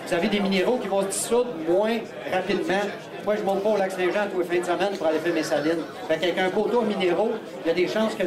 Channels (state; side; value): identical; both; correlation 1.00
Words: vous avez des minéraux qui vont se dissoudre moins rapidement. Moi, je ne monte pas au lac Saint-Jean tous les fins de semaine pour aller faire mes salines. Fait qu'avec un poteau à minéraux, il y a des chances que